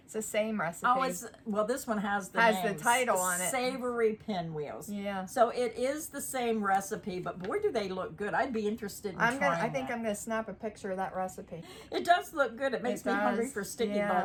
It's the same recipe. Oh, well, this one has the the title on it. Savory pinwheels. Yeah. So it is the same recipe, but boy, do they look good. I'd be interested in trying I think that. I'm gonna snap a picture of that recipe. It does look good. It makes me hungry does. for sticky Yeah,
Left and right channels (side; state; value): both; identical; correlation 1.00